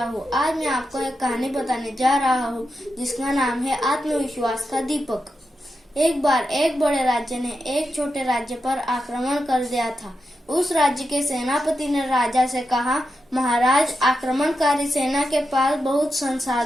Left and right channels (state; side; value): normal; both; correlation 0.88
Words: हूँ। आज मैं आपको एक कहानी बताने जा रहा हूँ जिसका नाम है आत्मविश्वास का दीपक। एक बार एक बड़े राज्य ने एक छोटे राज्य पर आक्रमण कर दिया था। उस राज्य के सेनापति ने राजा से कहा, महाराज, आक्रमणकारी सेना के पास बहुत